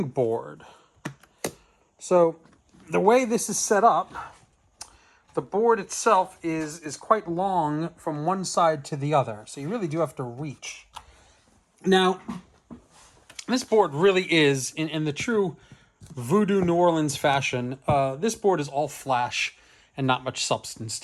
board. So the way this is set up, the board itself is quite long from one side to the other. So you really do have to reach. Now, this board really is, in the true voodoo New Orleans fashion, this board is all flash and not much substance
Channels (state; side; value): identical; both; correlation 1.00